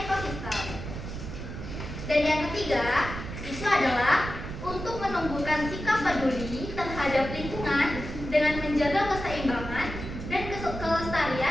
Dan yang ketiga itu adalah untuk menumbuhkan sikap peduli terhadap lingkungan dengan menjaga keseimbangan dan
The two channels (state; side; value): noise; right; rumble, 8 dB below the sound